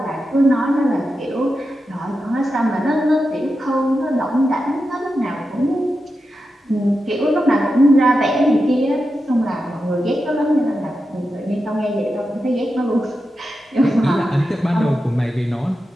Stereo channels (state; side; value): normal; both; correlation 0.89